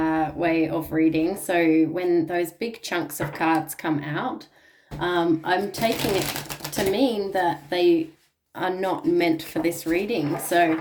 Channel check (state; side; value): identical; both; correlation 1.00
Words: way of reading. So when those big chunks of cards come out, I'm taking it to mean that they are not meant for this reading. So